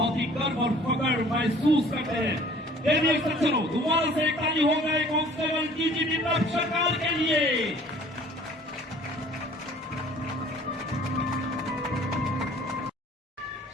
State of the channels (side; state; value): both; normal; correlation 0.51